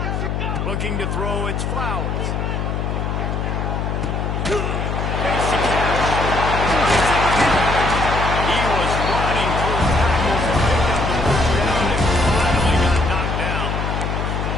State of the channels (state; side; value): noise; left; hum, 1 dB below the sound